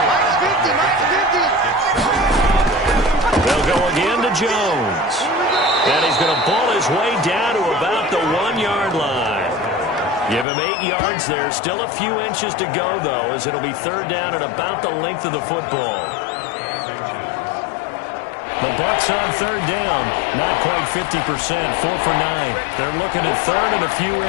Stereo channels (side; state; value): right; drops out; at 10.5 s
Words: They'll go again to Jones. And he's going to ball his way down to about the 1-yard line. Give him 8 yards there. Still a few inches to go, though, as it'll be 3rd down and about the length of the football. The Bucs on 3rd down. Not quite 50%. 4 for 9. They're looking at 3rd and a few